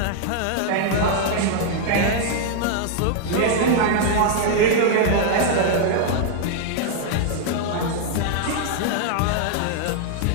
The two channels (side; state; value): both; different; correlation -0.01